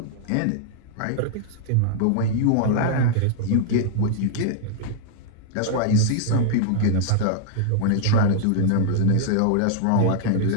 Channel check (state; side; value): different; both; correlation -0.01